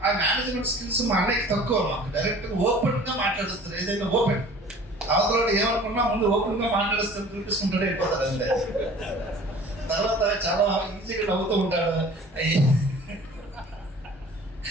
ఆ మేనేజ్మెంట్ స్కిల్స్ మా అన్నయ్యకి తక్కువ. మాకు డైరెక్ట్గా ఓపెన్గా మాట్లాడుస్తారు. ఏదైనా ఓపెన్ అవతల ఏమనుకున్నా ముందు ఓపెన్గా మాట్లాడిస్తారు, చూపించుకుంటాడే వెళ్ళిపోతారు అంతే. తర్వాత చాలా ఈజీగా నవ్వుతూ ఉంటాడు.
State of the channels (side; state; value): both; normal; correlation 0.47